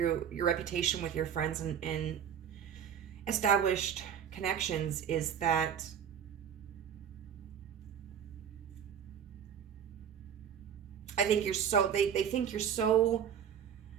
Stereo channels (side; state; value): left; quieter; 8.4 dB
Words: reputation with your friends and established connections is that I think you're so, they think you're so